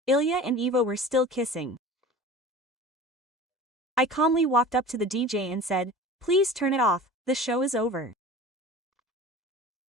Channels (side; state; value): both; normal; correlation 0.38